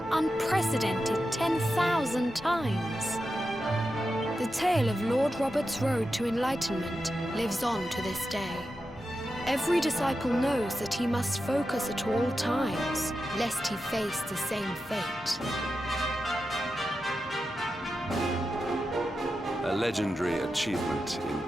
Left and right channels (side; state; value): both; normal; correlation 0.90